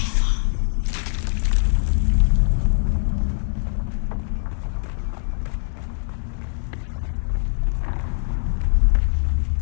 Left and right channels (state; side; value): silent; right; 64 dB below the other